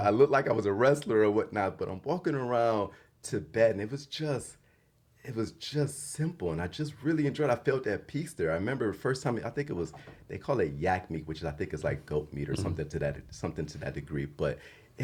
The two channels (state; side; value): identical; both; correlation 1.00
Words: looked like I was a wrestler or whatnot, but I'm walking around Tibet, and it was just simple, and I just really enjoyed it. I felt that peace there. I remember the first time, I think it was, they call it yak meat, which I think is like goat meat or something to that degree. But